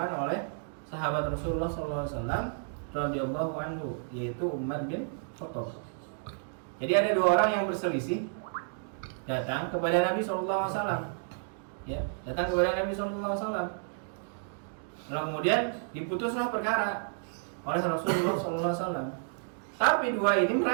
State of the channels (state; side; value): silent; left; digital silence